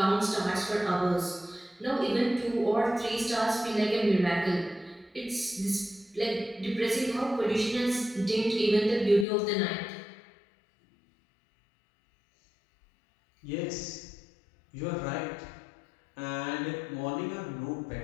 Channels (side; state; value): right; drops out; at 9.2 s